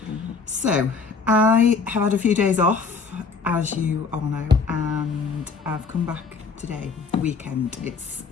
So I have had a few days off, as you all know, and I've come back today, weekend. It's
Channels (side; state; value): right; quieter; 4.9 dB